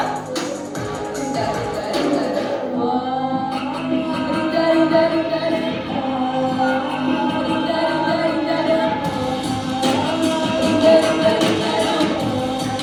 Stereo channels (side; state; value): both; identical; correlation 1.00